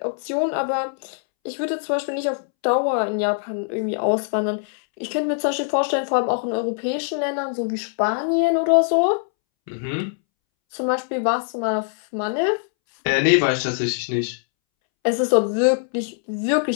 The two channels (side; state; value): right; silent; 64 dB below the other